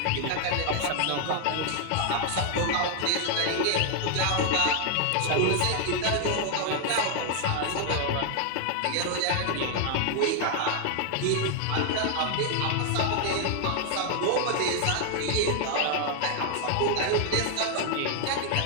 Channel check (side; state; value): both; different; correlation 0.00